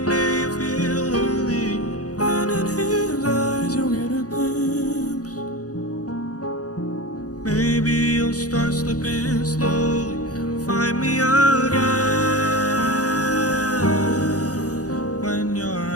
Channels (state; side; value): late; right; 0.67 ms